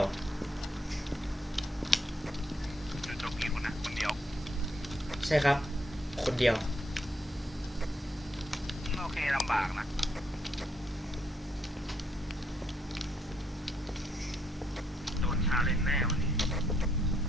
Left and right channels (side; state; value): both; normal; correlation 0.74